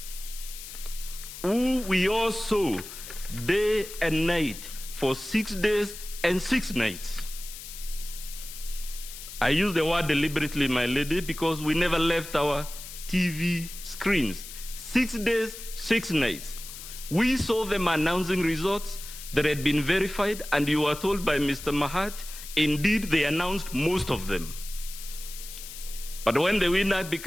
who we all saw day and night for 6 days and 6 nights? I use the word deliberately, my lady, because we never left our TV screens. 6 days, 6 nights. We saw them announcing results that had been verified, and you were told by Mr. Mahat, indeed, they announced most of them. But when the winner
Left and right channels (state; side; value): noise; left; hiss, 12 dB below the sound